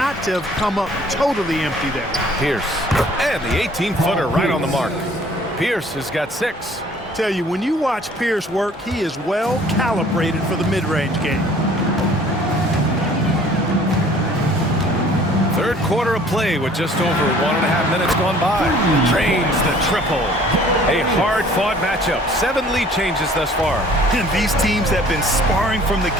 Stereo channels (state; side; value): normal; both; correlation 0.54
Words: to have come up totally empty there. Pierce. And the 18-footer right on the mark. Pierce has got 6. Tell you, when you watch Pierce work, he is well calibrated for the mid-range game. Third quarter of play with just over 1.5 minutes gone by. Drains the triple. A hard-fought matchup. 7 lead changes thus far. And these teams have been sparring from the